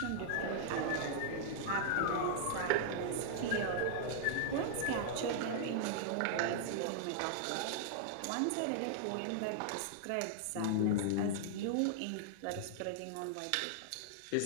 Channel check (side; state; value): both; different; correlation -0.01